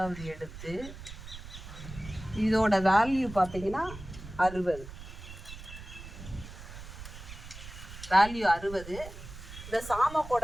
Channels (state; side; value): noise; right; rumble, 13 dB below the sound